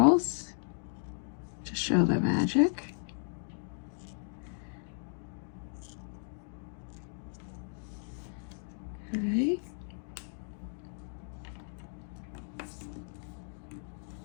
to show the magic. Okay.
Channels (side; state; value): right; silent; digital silence